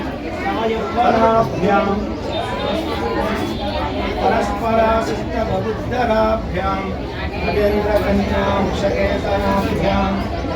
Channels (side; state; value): both; identical; correlation 1.00